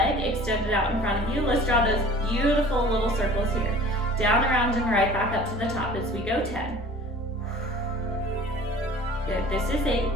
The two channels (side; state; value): both; normal; correlation 0.45